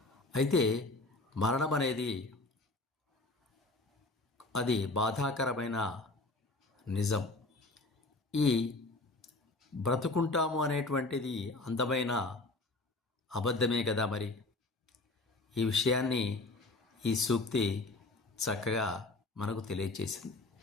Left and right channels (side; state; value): right; quieter; 3.0 dB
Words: అయితే మరణం అనేది అది బాధాకరమైన నిజం. ఈ బ్రతుకుంటాము అనేటువంటిది అందమైన అబద్ధమే కదా. మరి ఈ విషయాన్ని ఈ సూక్తి చక్కగా మనకు తెలియచేసింది.